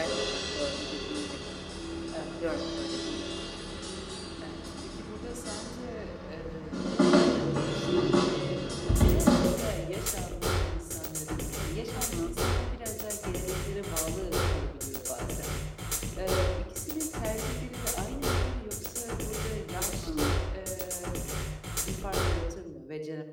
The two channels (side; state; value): both; identical; correlation 1.00